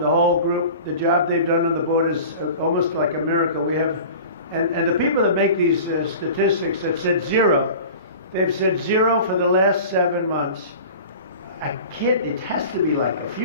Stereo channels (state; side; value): inverted; both; correlation -0.39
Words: the whole group, the job they've done on the board is almost like a miracle. We have, and the people that make these statistics have said zero. They've said zero for the last 7 months. I kid, it has to be like a